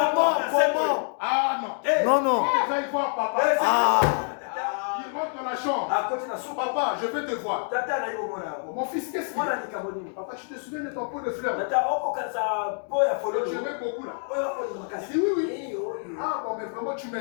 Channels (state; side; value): silent; right; 56 dB below the other